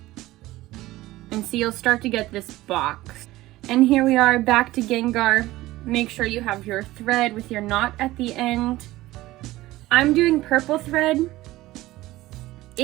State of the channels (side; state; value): left; quieter; 17.3 dB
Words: And see, you'll start to get this box. And here we are back to Gengar. Make sure you have your thread with your knot at the end. I'm doing purple thread.